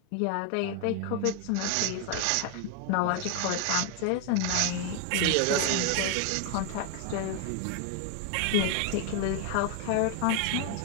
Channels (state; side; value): different; both; correlation 0.01